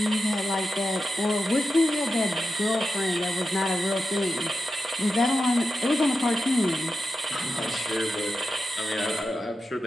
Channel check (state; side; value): normal; both; correlation 0.90